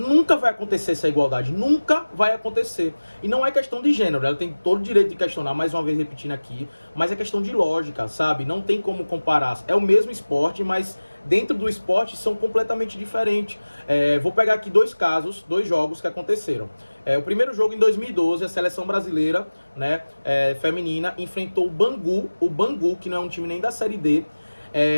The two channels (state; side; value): inverted; both; correlation -1.00